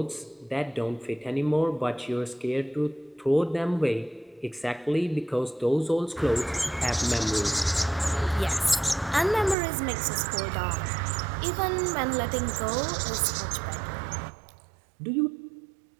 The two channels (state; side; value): drops out; left; at 9.6 s